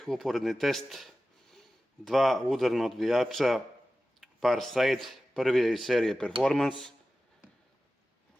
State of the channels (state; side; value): normal; both; correlation 0.95